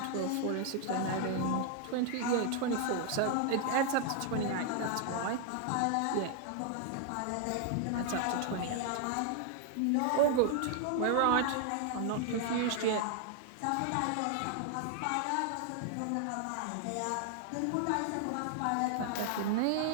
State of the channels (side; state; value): both; different; correlation 0.00